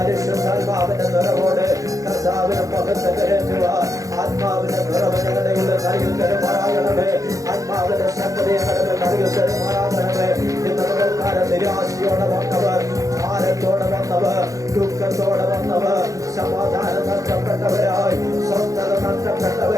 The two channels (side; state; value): left; late; 0.16 ms